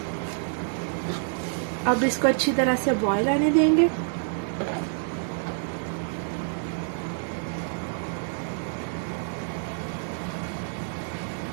अब इसको अच्छी तरह से बॉईल आने देंगे।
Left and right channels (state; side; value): silent; left; digital silence